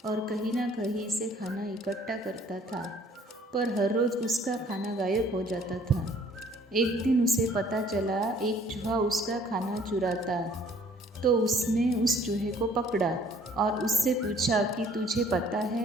और कहीं ना कहीं से खाना इकट्ठा करता था, पर हर रोज़ उसका खाना गायब हो जाता था। एक दिन उसे पता चला एक चूहा उसका खाना चुराता, तो उसने उस चूहे को पकड़ा और उससे पूछा कि तुझे पता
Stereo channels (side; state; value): both; normal; correlation 0.57